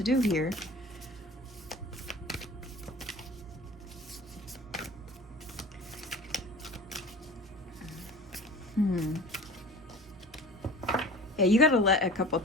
do here. Yeah, you gotta let a couple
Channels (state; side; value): normal; both; correlation 0.41